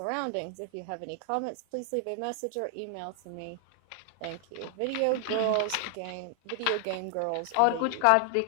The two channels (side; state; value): both; different; correlation 0.00